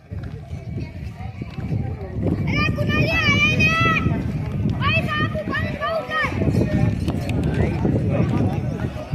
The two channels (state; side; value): identical; both; correlation 1.00